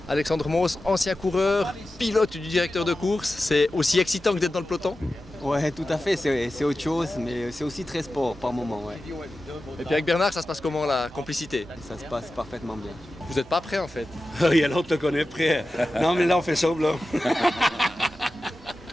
Alexandre Moos, ancien coureur, pilote du directeur de course, c'est aussi excitant que d'être dans le peloton? Ouais, tout à fait, c'est autre chose, mais c'est aussi très sport par moment. Ouais. Et puis avec Bernard, ça se passe comment la complicité? Ça se passe parfaitement bien. Vous n'êtes pas prêt en fait? Il y a l'autre qu'on est prêt. Non mais là on fait ça là.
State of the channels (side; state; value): both; normal; correlation 0.94